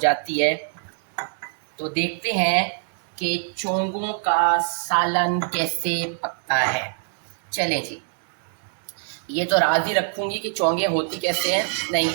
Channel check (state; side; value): silent; left; digital silence